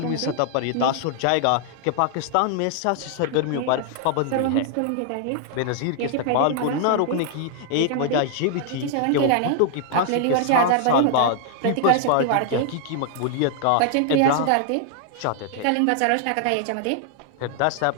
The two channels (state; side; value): different; both; correlation 0.00